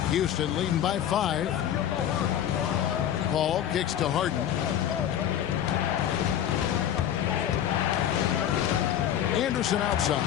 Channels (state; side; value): quieter; right; 10.5 dB